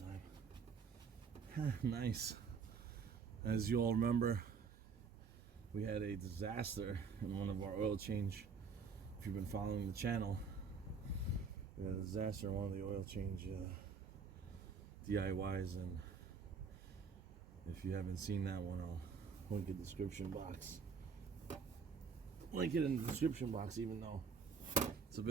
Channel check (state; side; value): quieter; left; 5.7 dB